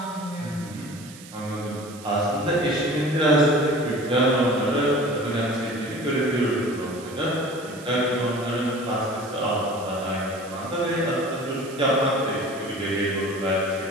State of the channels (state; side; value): noise; right; hiss, 18 dB below the sound